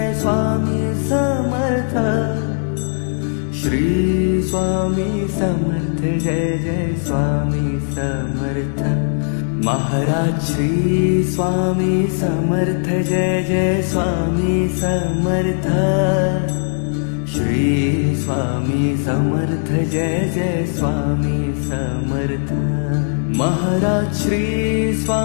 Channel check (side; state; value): right; silent; digital silence